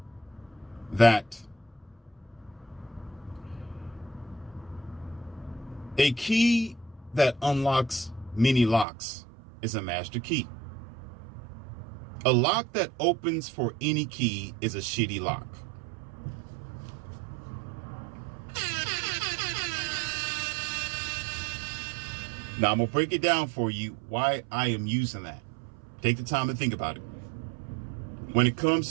that a key that unlocks many locks is a master key. A lock that opens for any key is a shitty lock. Now I'm going to break it down for you why I am using that. Take the time to think about it. When it comes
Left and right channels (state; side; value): drops out; left; at 8.8 s